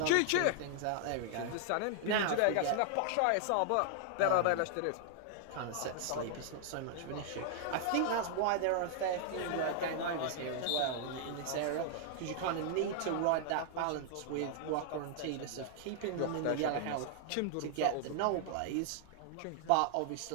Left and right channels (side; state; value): both; different; correlation -0.01